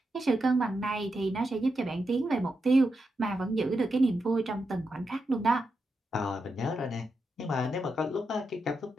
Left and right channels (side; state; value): both; normal; correlation 0.86